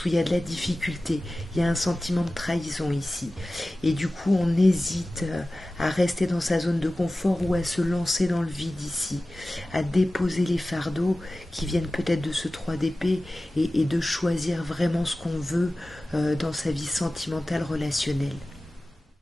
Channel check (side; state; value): both; normal; correlation 0.96